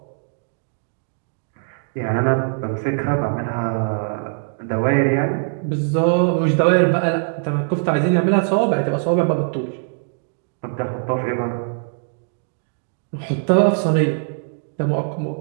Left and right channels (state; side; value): silent; left; digital silence